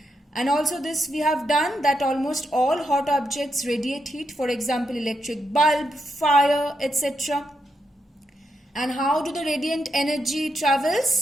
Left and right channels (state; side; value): normal; both; correlation 0.82